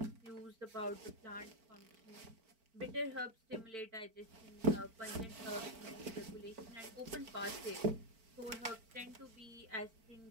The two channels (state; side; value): late; left; 4.5 ms